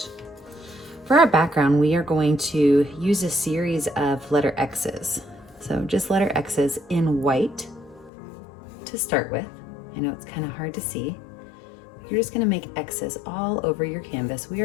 For our background, we are going to use a series of letter X's. So just letter X's in white to start with. I know it's kind of hard to see. You're just going to make X's all over your canvas. We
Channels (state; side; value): drops out; right; at 8.1 s